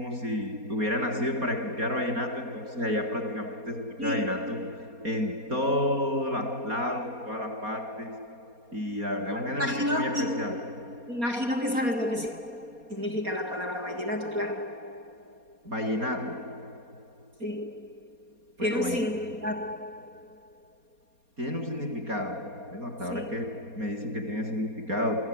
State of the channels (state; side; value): late; left; 4.2 ms